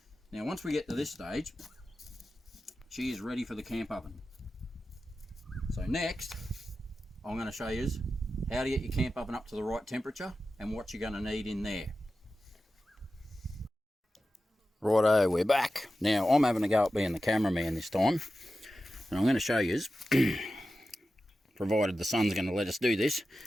Now, once we get to this stage, she is ready for the camp oven. So next, I'm going to show you how to get your camp oven up to the right temperature and what you're going to need in there. Righto, we're back. Now, I'm having a go at being the cameraman this time. And I'm going to show you, provided the sun's going to let us do this,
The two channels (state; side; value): normal; both; correlation 0.93